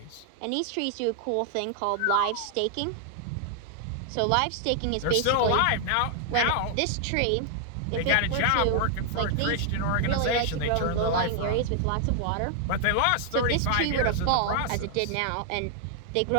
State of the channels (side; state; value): both; different; correlation 0.00